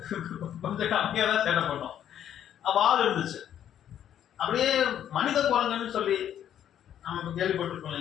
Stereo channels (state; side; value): quieter; right; 10.2 dB